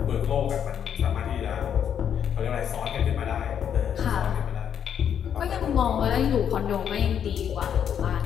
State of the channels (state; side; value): quieter; right; 8.6 dB